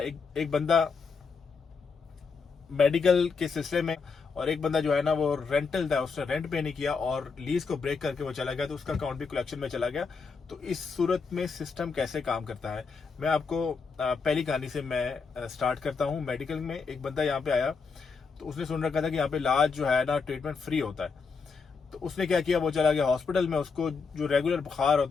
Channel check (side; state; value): right; quieter; 5.1 dB